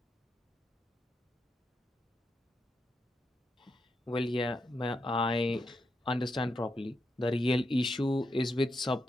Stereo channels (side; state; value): both; normal; correlation 0.84